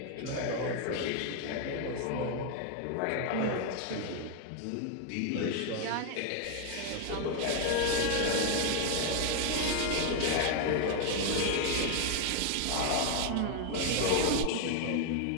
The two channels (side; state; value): both; different; correlation 0.00